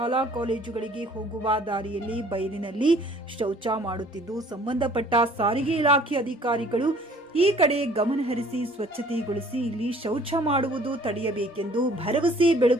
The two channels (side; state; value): both; normal; correlation 0.54